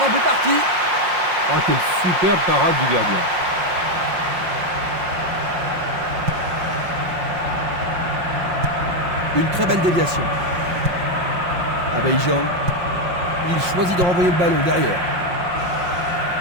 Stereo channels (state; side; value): late; left; 5.6 ms